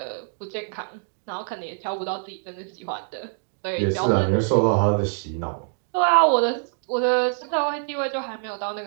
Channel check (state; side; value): silent; left; digital silence